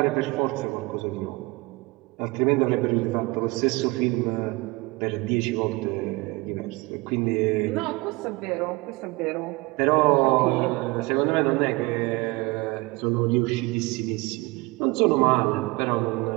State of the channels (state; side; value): quieter; left; 23.5 dB